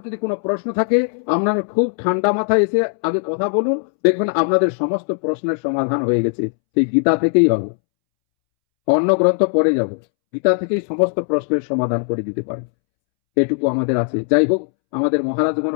যদি কোনো প্রশ্ন থাকে, আপনারা খুব ঠান্ডা মাথায় এসে আগে কথা বলুন, দেখবেন আপনাদের সমস্ত প্রশ্নের সমাধান হয়ে গেছে। সেই গীতা থেকেই হবে, অন্য গ্রন্থ পরে যাব, গীতা থেকেই সমস্ত প্রশ্নের সমাধান করে দিতে পারে। এটুকু আমাদের আছে। যাই হোক, আমাদের মহারাজগণ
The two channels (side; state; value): right; silent; 67 dB below the other